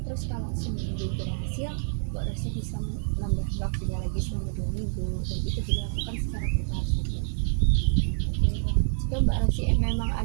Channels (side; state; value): left; silent; 57 dB below the other